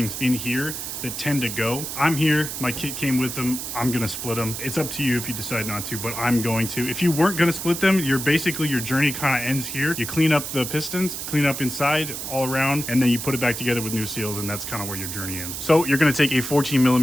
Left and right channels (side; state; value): right; noise; hiss, 6 dB below the sound